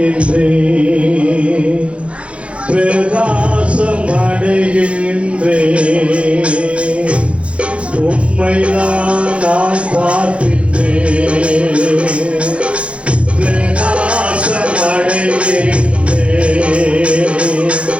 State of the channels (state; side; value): late; left; 0.061 ms